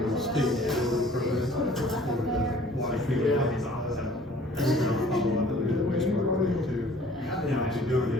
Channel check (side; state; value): both; normal; correlation 0.53